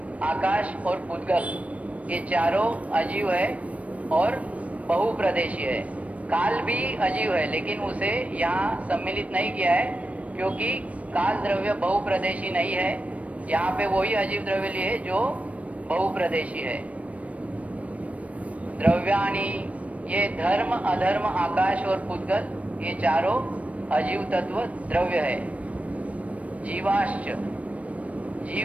आकाश और पुद्गल ये चारों अजीव है और बहुप्रदेशीय है। काल भी अजीव है, लेकिन उसे यहाँ सम्मिलित नहीं किया है क्योंकि काल द्रव्य बहुप्रदेशी नहीं है। यहाँ पे वही अजीव द्रव्य लिए जो बहुप्रदेशी है। द्रव्याणी, ये धर्म, अधर्म, आकाश और पुद्गल ये चारों अजीव तत्व द्रव्य है। जीवाश्च,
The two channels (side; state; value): left; late; 0.066 ms